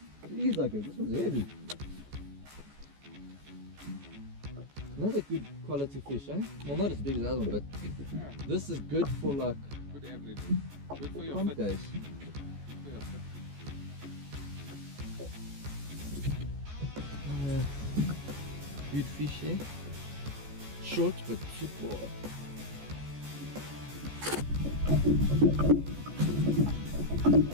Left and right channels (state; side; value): late; left; 14 ms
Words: these are good. This one's heavy. Another good quality fish, eh? Well, not as big as the other one, but Yeah. this is good for like Good average. Good for your pump fit. days. Good for your fit. Good fish, eh? Short but football.